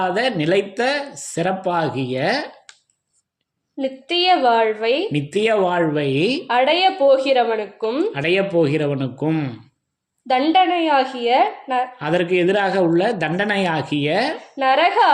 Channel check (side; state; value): both; identical; correlation 1.00